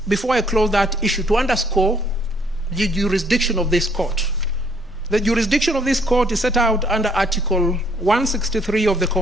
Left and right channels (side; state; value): both; normal; correlation 0.65